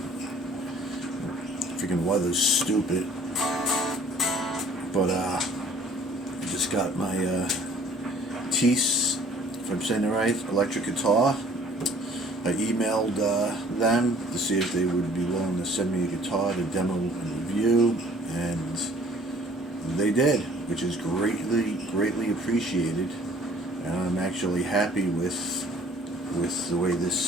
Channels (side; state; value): both; normal; correlation 0.54